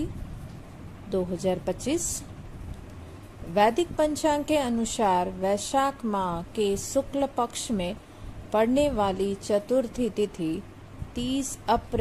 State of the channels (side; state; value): both; identical; correlation 1.00